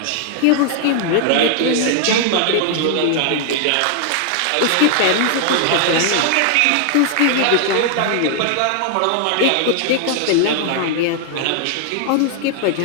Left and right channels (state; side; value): different; both; correlation 0.00